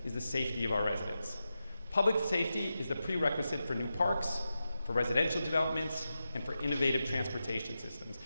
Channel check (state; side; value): inverted; both; correlation -0.90